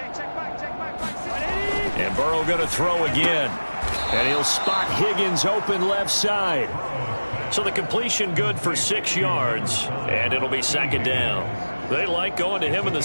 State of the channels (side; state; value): both; inverted; correlation -1.00